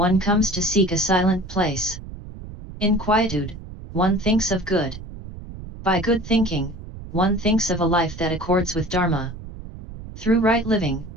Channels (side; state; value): right; noise; rumble, 13 dB below the sound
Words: comes to seek a silent place. In quietude, one thinks of good. By good thinking, one thinks of a life that accords with Dharma. Through right living,